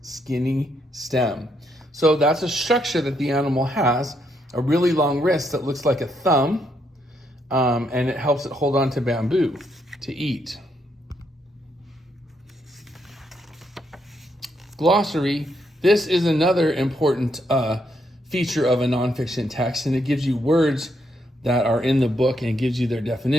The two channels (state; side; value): normal; both; correlation 0.76